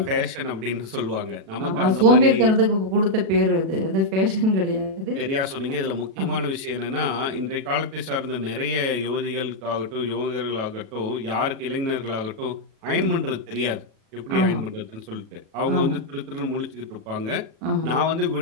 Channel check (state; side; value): late; left; 36 ms